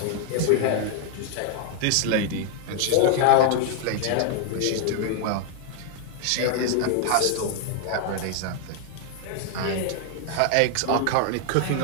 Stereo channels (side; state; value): both; different; correlation 0.00